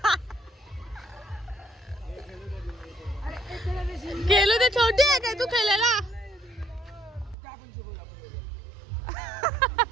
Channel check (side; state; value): left; drops out; at 7.4 s